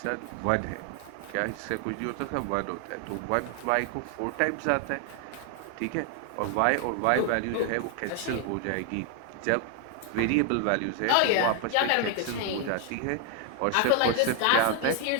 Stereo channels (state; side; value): different; both; correlation 0.00